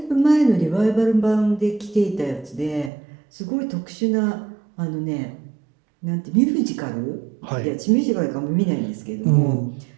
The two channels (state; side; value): drops out; left; at 2.9 s